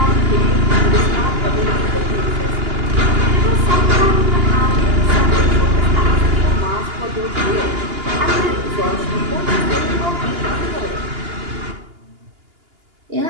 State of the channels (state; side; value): late; left; 2.8 ms